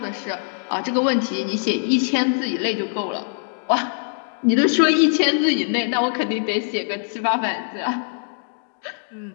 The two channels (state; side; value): silent; right; digital silence